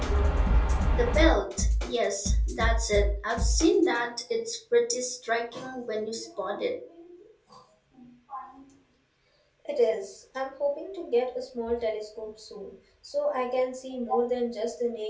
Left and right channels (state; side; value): identical; both; correlation 1.00